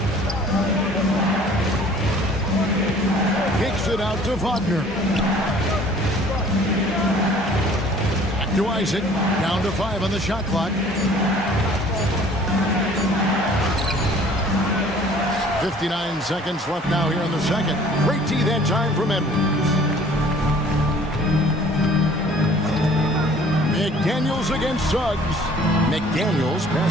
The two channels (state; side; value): normal; both; correlation 0.52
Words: Kicks it out to Wagner. Back to Isaac. Down to 5 on the shot clock. 59 seconds left now here in the second. Great tee that time from Edwards. McDaniels against Suggs. McDaniels